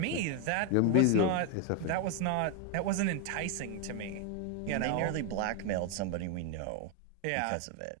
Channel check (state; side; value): different; both; correlation 0.01